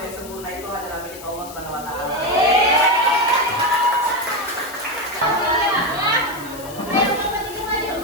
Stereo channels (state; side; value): noise; left; hiss, 16 dB below the sound